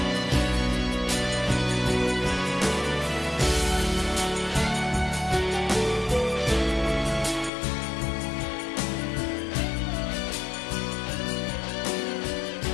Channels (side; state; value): right; drops out; at 7.5 s